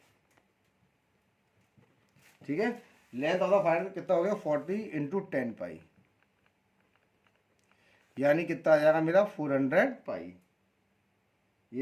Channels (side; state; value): both; identical; correlation 1.00